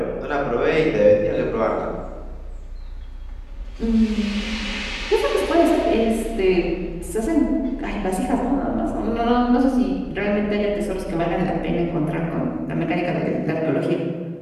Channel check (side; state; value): both; identical; correlation 1.00